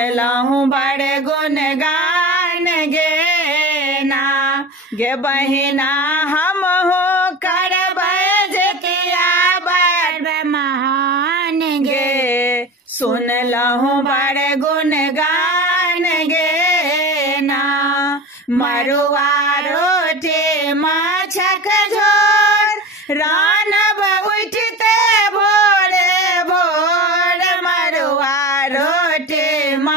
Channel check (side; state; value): both; normal; correlation 0.32